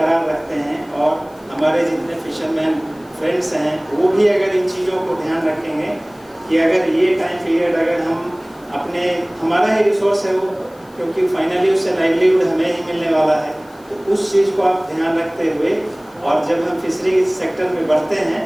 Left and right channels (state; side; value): noise; left; hiss, 29 dB below the sound